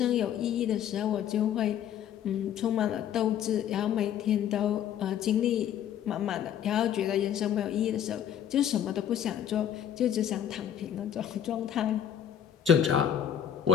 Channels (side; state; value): right; quieter; 9.6 dB